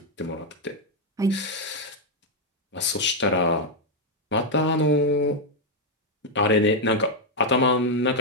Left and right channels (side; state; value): both; normal; correlation 0.00